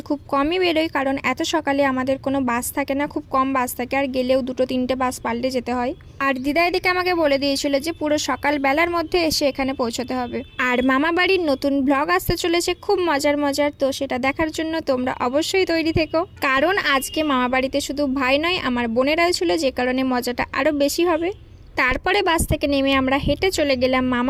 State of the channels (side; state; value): both; identical; correlation 1.00